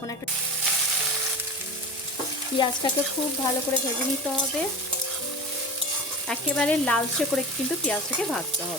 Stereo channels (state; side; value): normal; both; correlation 0.31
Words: একটা পেঁয়াজটাকে খুব ভালো করে ভেজে নিতে হবে, একেবারে লালচে করে কিন্তু পেঁয়াজটাকে ভাজতে